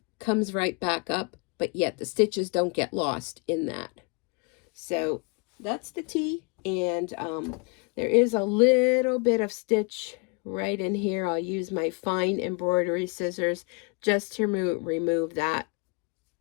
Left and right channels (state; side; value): quieter; right; 32.3 dB